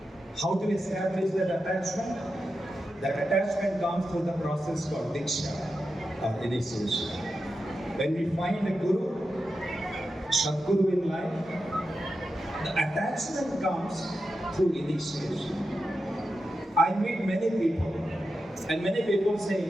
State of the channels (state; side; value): normal; both; correlation 0.90